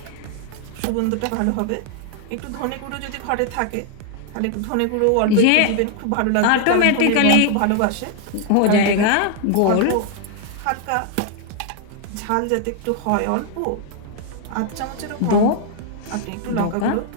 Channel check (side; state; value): both; different; correlation 0.00